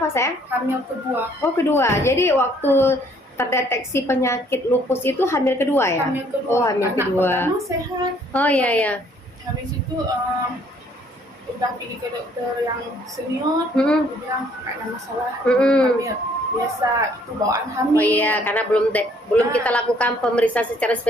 sayang? Hamil kedua. Oh kedua. Jadi waktu terdeteksi penyakit lupus itu hamil kedua ya? Hamil kedua. Oh hamil Anak kedua. pertama sehat. Oh iya. Habis itu udah pergi ke dokter yang senior, dia bilang nggak ada masalah hamil. Biasa itu bawaan hamil. Oh iya, karena belum kita lakukan pemeriksaan secara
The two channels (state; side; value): normal; both; correlation 0.62